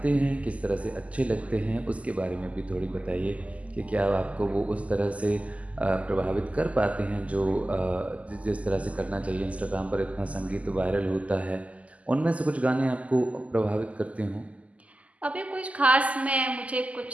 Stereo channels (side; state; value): left; late; 0.069 ms